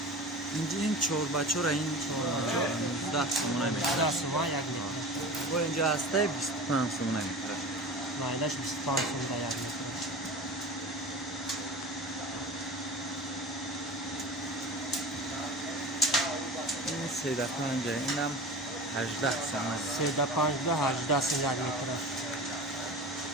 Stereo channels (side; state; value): both; normal; correlation 0.34